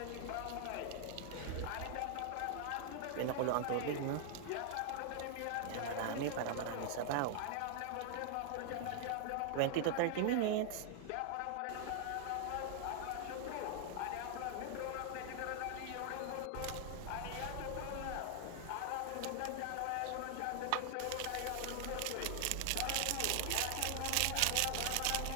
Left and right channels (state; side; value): different; both; correlation 0.00